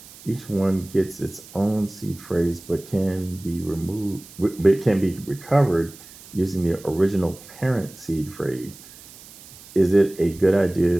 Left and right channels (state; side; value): noise; right; hiss, 20 dB below the sound